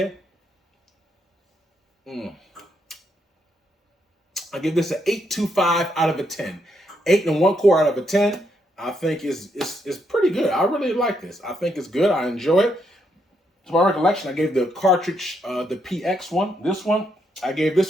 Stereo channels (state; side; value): normal; both; correlation 0.77